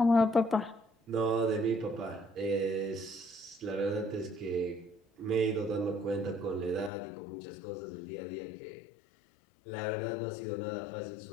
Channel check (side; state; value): right; drops out; at 6.9 s